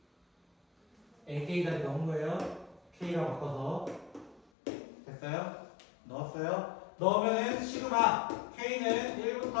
AK까지 넣은 거예요. K라고 바꿔서. 됐어요? 넣었어요? 넣으면은 시그마 K는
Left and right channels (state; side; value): drops out; right; at 4.4 s